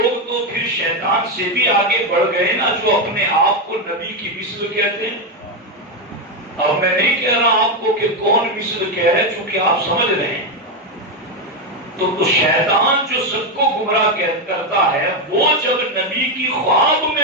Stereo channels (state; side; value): normal; both; correlation 0.07